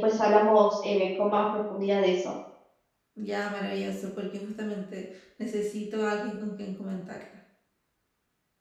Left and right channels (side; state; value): both; identical; correlation 1.00